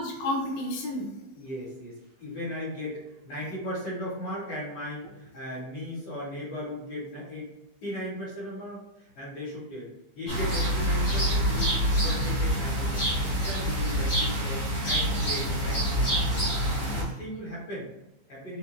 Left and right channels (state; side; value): late; right; 15 ms